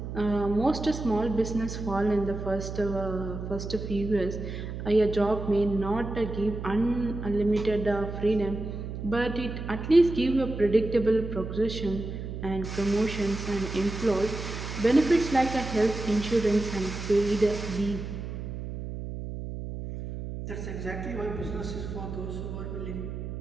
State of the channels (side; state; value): right; noise; hum, 7 dB below the sound